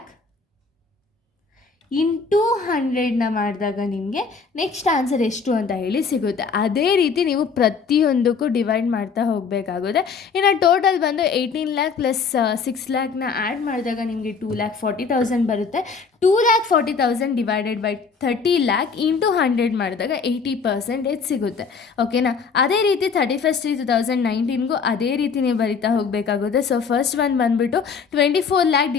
into 100ನ ಮಾಡಿದಾಗ ನಿಮಗೆ ನೆಕ್ಸ್ಟ್ ಆನ್ಸರ್ ಎಷ್ಟು ಅಂತ ಹೇಳಿ ಸಿಗುತ್ತೆ. ಅದೇ ರೀತಿ ನೀವು ಪ್ರತಿಯೊಂದಕ್ಕೂ ಡಿವೈಡ್ ಮಾಡ್ತಾ ಹೋಗಬೇಕಾಗುತ್ತೆ. ಇನ್ನು ಟೋಟಲ್ ಬಂದು 18 lakh ಪ್ಲಸ್ 6 lakhನ ಆ್ಯಡ್ ಮಾಡಿದಾಗ ನಿಮಗೆ 2,40,000 ಬರುತ್ತೆ. 2,40,000 ಡಿವೈಡೆಡ್ ಬೈ 30 lakh ಇಂಟು 100 ಮಾಡಿದಾಗ 80% ಸಿಗುತ್ತೆ. ಓಕೆನಾ. ಅದೇ ರೀತಿ 31/3/2019ಗೂ ಅದೇ ರೀತಿ ನೀವು ಬರಿತಾ ಹೋಗಬೇಕಾಗುತ್ತೆ. ಸೊ ಫಸ್ಟ್ ಒನ್ ಬಂದುಬಿಟ್ಟು 24 lakh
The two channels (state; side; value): quieter; right; 5.4 dB